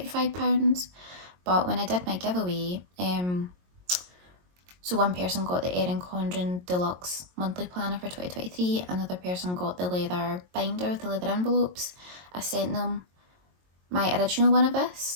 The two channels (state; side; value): late; left; 22 ms